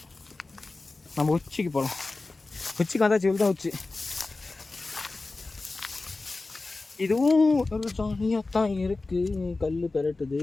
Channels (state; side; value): quieter; right; 3.4 dB